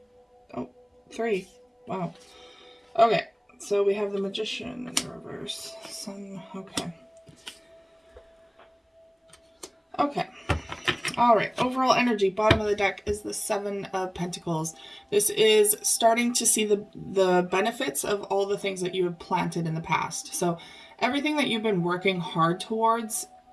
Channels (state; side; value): identical; both; correlation 1.00